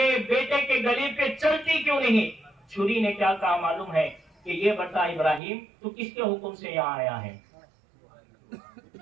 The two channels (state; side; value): drops out; left; at 5.4 s